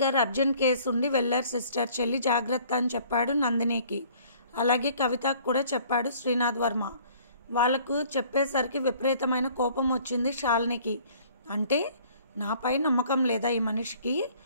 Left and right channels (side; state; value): both; inverted; correlation -0.55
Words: అర్జెంట్ కేసు ఉండి వెళ్ళారు సిస్టర్, చెల్లి జాగ్రత్త అని చెప్పాడు నందినికి. అలాగే కవితకు కూడా చెప్పాడు శ్రీనాథ్ వర్మ. వాళ్ళకు చెప్పేసరికి విపరీతమైన కోపం వచ్చింది శాలినికి. అంటే నాపై నమ్మకం లేదా ఈ మనిషికి?